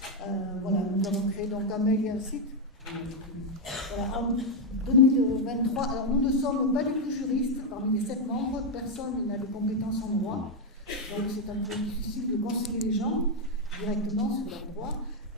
Voilà, nous avons créé donc un mail et un site. Voilà, en 2023, alors nous ne sommes pas du tout juristes, parmi les 7 membres, personne n'a de compétences en droit, donc c'est un peu difficile de conseiller les gens directement sur leur droit.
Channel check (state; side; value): normal; both; correlation 0.02